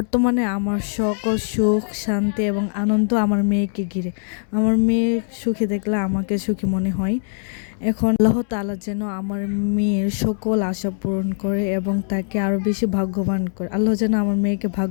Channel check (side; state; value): right; silent; 65 dB below the other